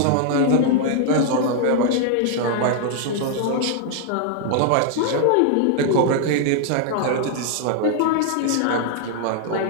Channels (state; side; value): different; both; correlation 0.00